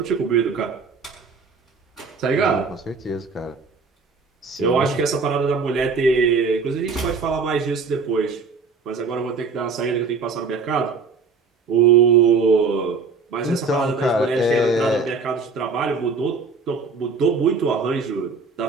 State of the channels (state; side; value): quieter; left; 4.6 dB